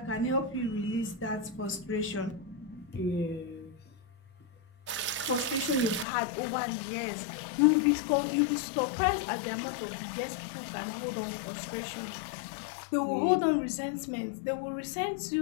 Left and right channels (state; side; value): drops out; right; at 6.1 s